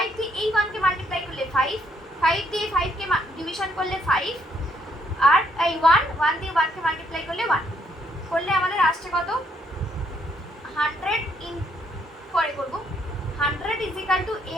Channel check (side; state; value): both; normal; correlation 0.71